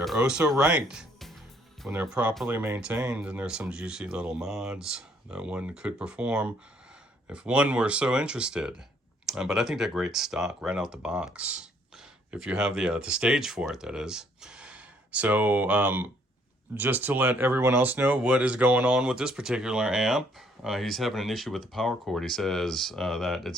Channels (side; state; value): both; normal; correlation 0.65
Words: oh so right when they're properly maintained. And there's some juicy little mods that one could perform if one were so interested. But I think they're great stock right out the box. If you have the stage for it, that is. So just to let everyone else know what is going on with this particular amp, he's having an issue with the power cord. He says that